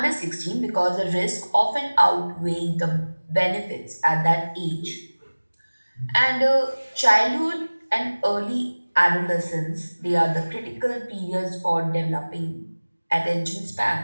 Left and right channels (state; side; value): inverted; both; correlation -1.00